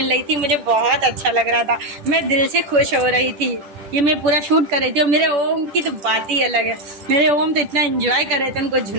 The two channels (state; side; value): late; left; 10 ms